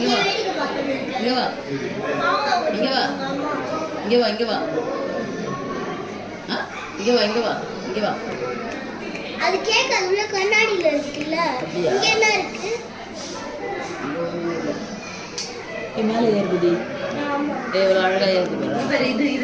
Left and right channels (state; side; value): identical; both; correlation 1.00